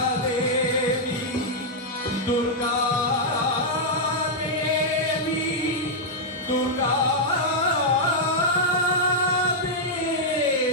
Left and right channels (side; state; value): both; normal; correlation -0.05